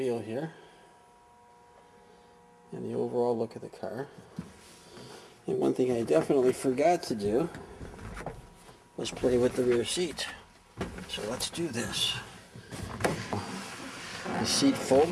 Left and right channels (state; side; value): identical; both; correlation 1.00